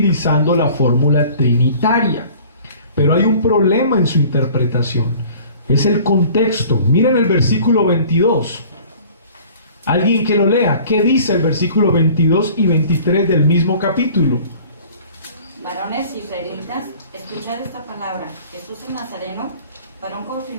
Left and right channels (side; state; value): both; inverted; correlation -0.48